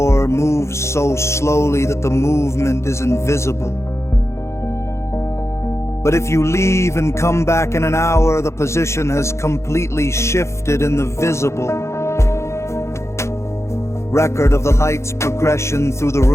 moves so slowly that the movement is invisible. But if you leave and come back in an hour, the position has completely shifted in the visible record of the light's progression through the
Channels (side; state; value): right; late; 0.13 ms